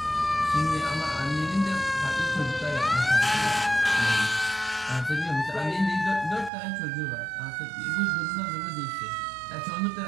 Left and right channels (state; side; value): drops out; left; at 6.5 s